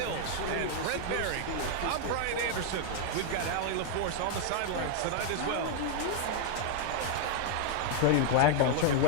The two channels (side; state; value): both; different; correlation 0.00